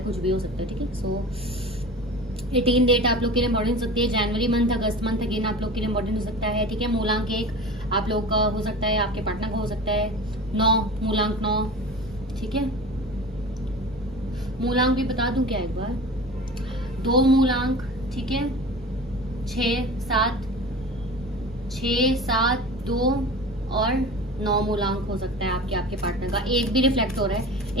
कुछ भी हो सकता है। ठीक है, सो 18 डेट आप लोग के लिए इंपॉर्टेंट हो सकती है। जनवरी मंथ, अगस्त मंथ अगेन आप लोग के लिए इंपॉर्टेंट हो सकता है। ठीक है, मूलांक 1 आप लोग का हो सकता है, आपके पार्टनर का हो सकता है 9, मूलांक 9, ठीक है। मूलांक भी बता दूं क्या एक बार, 2 मूलांक, ठीक है, 6, 7, 2 और 9 मूलांक हो सकता है आपके पार्टनर का। एक भी रिफ्लेक्ट हो रहा है,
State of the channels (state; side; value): normal; both; correlation 0.35